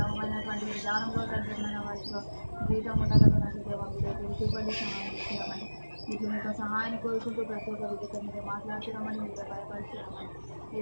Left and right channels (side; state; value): both; inverted; correlation -1.00